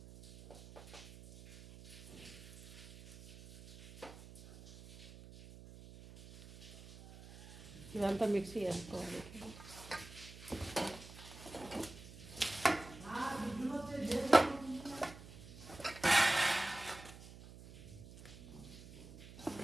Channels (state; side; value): noise; right; hum, 16 dB below the sound